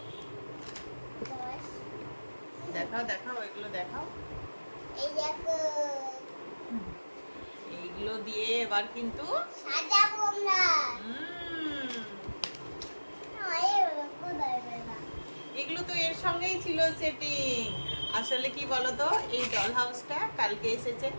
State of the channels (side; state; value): both; inverted; correlation -1.00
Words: দেখাও দেখাও, এগুলো দেখাও। এই দেখো, এইগুলো দিয়ে এবার কিন্তু সাজাবো আমরা। এগুলো তো এর সঙ্গেই ছিল সেটিং। আসলে কি বলতো, এই ডল হাউসটা কালকে এসেছে,